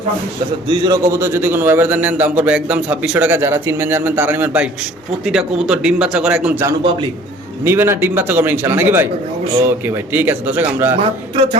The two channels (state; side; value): normal; both; correlation 0.51